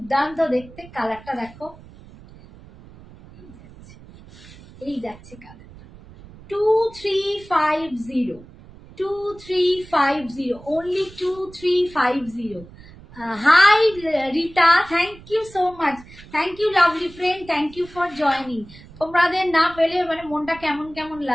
দেখতে। কালারটা দেখো, এই যাচ্ছে কালারটা 2350, only 2350। Hi Rita, thank you so much, thank you lovely friend, thank you for joining. তোমাদের না পেলে মানে মনটা কেমন কেমন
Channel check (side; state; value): right; noise; rumble, 20 dB below the sound